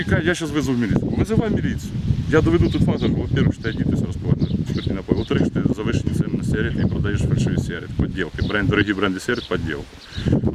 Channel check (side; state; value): both; identical; correlation 1.00